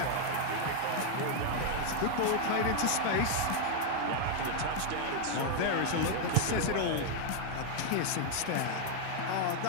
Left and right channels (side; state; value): both; different; correlation 0.00